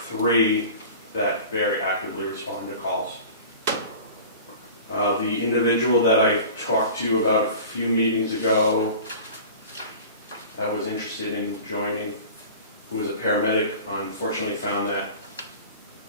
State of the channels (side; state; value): both; inverted; correlation -0.39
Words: that very actively respond to calls. The individual that I talked to you about a few meetings ago that was interested in joining, who was a paramedic, unfortunately found that